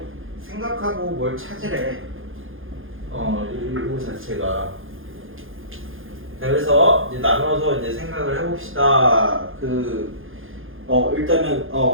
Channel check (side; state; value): left; late; 0.59 ms